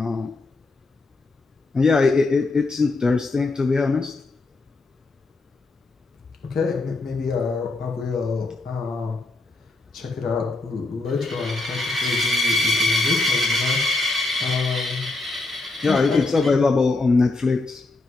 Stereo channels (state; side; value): quieter; right; 3.3 dB